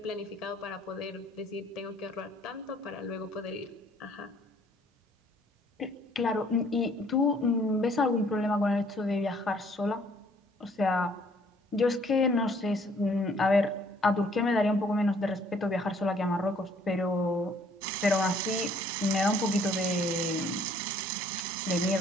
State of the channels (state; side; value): normal; both; correlation 0.61